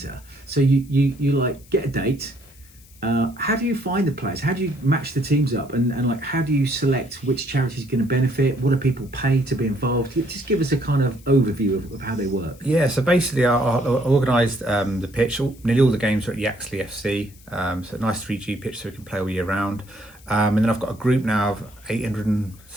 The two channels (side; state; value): left; noise; hiss, 25 dB below the sound